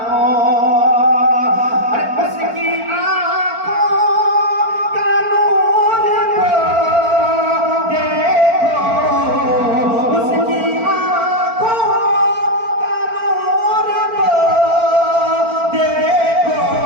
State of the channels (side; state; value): left; late; 4.4 ms